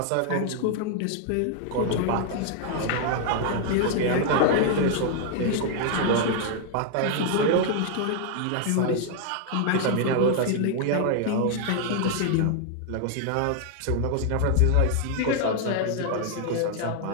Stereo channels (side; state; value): both; different; correlation 0.00